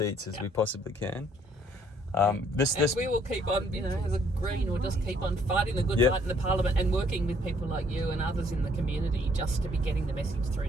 as we possibly can. This we will keep on, you know, as a Green, we'll just keep on fighting the good Yep. fight in the Parliament and working with people like you and others in the community just to be getting the message through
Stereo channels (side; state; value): both; normal; correlation 0.65